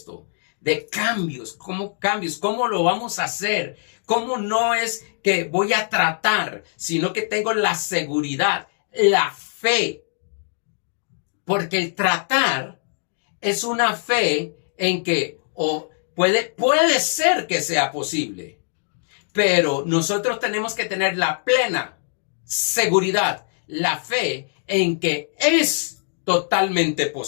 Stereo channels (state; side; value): silent; right; digital silence